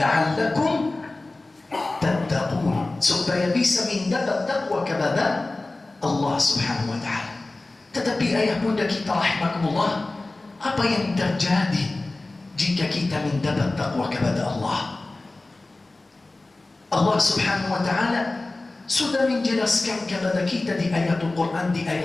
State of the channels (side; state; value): right; quieter; 3.0 dB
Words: tattaqun, supaya bisa mendapat takwa kepada Allah Subhanahu wa Ta'ala. Tetapi ayah bunda kita rahimakumullah, apa yang terjadi jika kita mendapat takwa kepada Allah? Allah Subhanahu wa Ta'ala sudah menjelaskan kepada kita di ayat Al-Quran, di